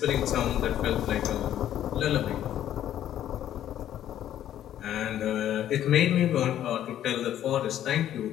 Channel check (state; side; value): quieter; right; 11.4 dB